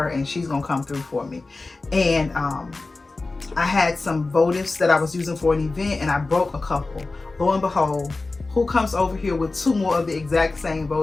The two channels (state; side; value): quieter; right; 3.5 dB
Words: and she's gonna come through for me. And I had some votives that I was using for an event, and I broke a couple. Lo and behold, who comes over here with 2 more of the exact same